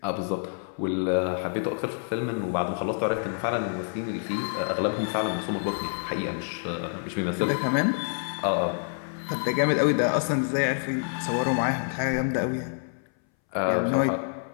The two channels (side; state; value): right; silent; 60 dB below the other